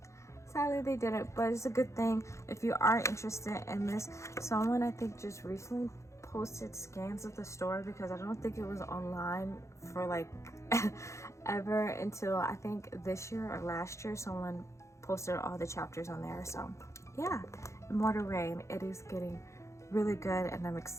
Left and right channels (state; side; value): late; right; 0.14 ms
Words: sadly they didn't. But it's a good thing if you are interested in this. Someone I think just recently posted scans of the store, because I don't think it was online for like ever until I think this year or last year. Someone posted all the chapters on there. So yeah, Immortal Rain, it is getting really good, and I'm